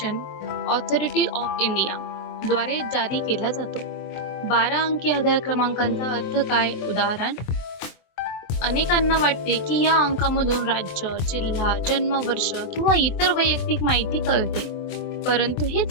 authority of India द्वारे जारी केला जातो. 12 अंकी आधार क्रमांकाचा अर्थ काय? उदाहरण, अनेकांना वाटते की या अंकामधून राज्य, जिल्हा, जन्मवर्ष किंवा इतर वैयक्तिक माहिती कळते, परंतु हे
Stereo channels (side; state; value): right; late; 24 ms